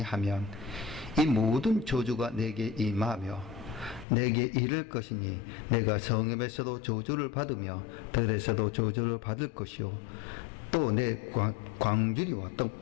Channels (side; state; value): right; drops out; at 4.0 s